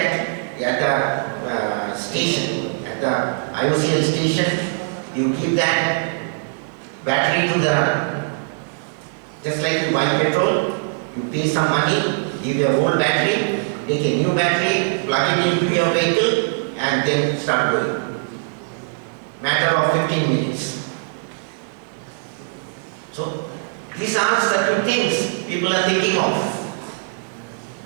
at the station, at the IOCL station, you give that battery to the, just like you buy petrol, you pay some money, give your old battery, take a new battery, plug it into your vehicle and then start going. Matter of 15 minutes. So these are certain things people are thinking of.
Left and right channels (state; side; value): silent; left; 65 dB below the other